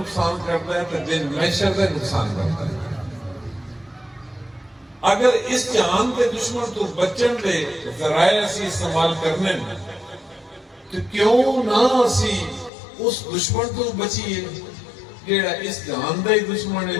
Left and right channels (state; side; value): drops out; right; at 12.7 s